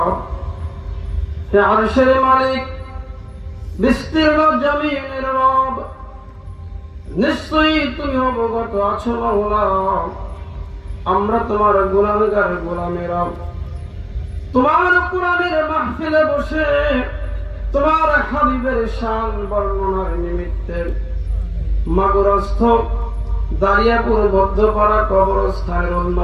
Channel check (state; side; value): identical; both; correlation 1.00